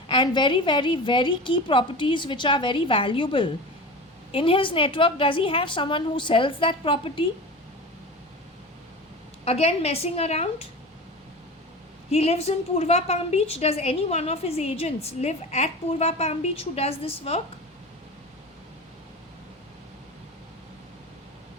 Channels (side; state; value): both; normal; correlation 0.31